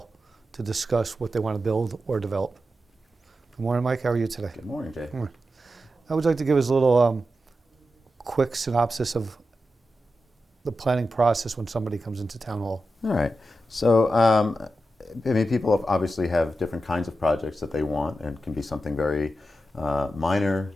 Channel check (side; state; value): both; normal; correlation 0.89